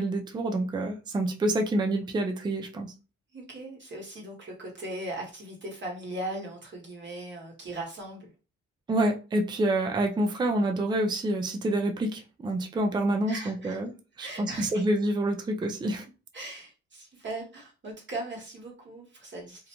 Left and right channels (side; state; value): both; normal; correlation 0.66